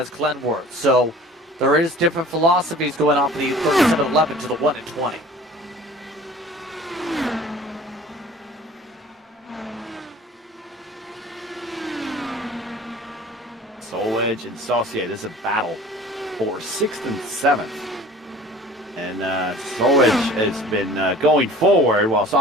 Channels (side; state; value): both; normal; correlation 0.45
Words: Glenworth. So there is different philosophies going on for the 37-11 to the 1 and 20. Solwedge and Saucier, this is a battle for 6th and 7th. And Solwedge has been going forward while